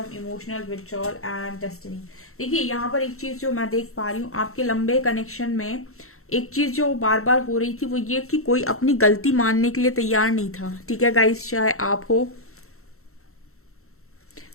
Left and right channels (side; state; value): right; late; 0.63 ms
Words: emotional withdrawal and destiny. देखिए यहाँ पर एक चीज जो मैं देख पा रही हूँ आपके लंबे कनेक्शन में, एक चीज जो बार बार हो रही थी वो ये कि कोई अपनी गलती मानने के लिए तैयार नहीं था, ठीक है गाइस। चाहे आप हो,